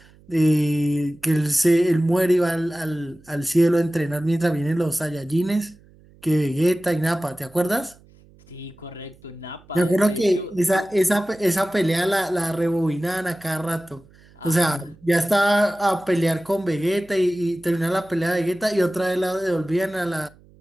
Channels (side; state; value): right; noise; hum, 27 dB below the sound